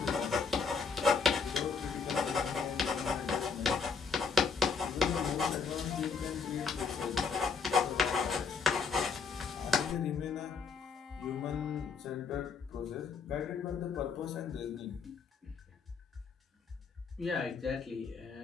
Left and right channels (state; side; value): quieter; right; 5.3 dB